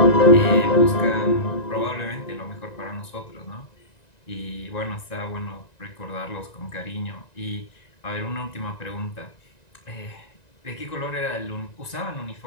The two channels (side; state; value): right; late; 1.9 ms